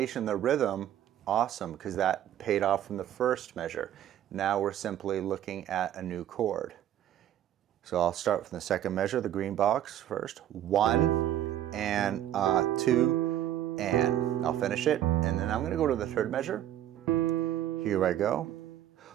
the rhythm, awesome, because that paid off from the first measure. Now we're simply looking at a new chord. So I'll start from the 2nd measure, the green box first. 1 and 2 and. I'll finish it, and then I'm going to go to the 3rd measure. Here I go.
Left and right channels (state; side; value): quieter; left; 11.7 dB